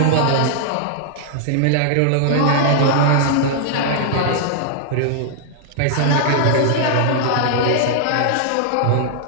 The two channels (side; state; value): both; different; correlation -0.01